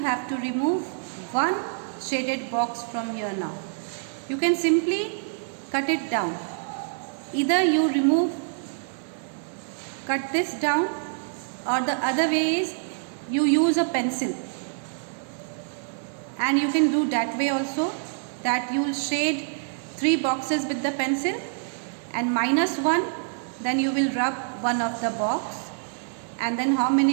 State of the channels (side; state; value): left; silent; 61 dB below the other